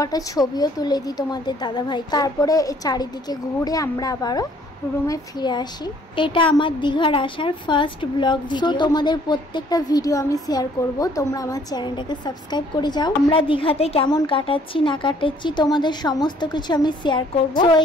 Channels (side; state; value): both; normal; correlation 0.60